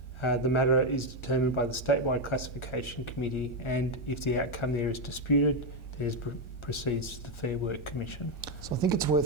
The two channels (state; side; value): late; right; 1.4 ms